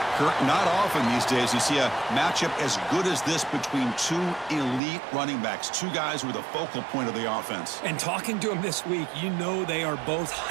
Kurt, not often these days you see a matchup as good as this between 2 elite running backs, 2 guys who are the focal point of the offense. And talking to them this week, you know they are both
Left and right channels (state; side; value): drops out; left; at 4.8 s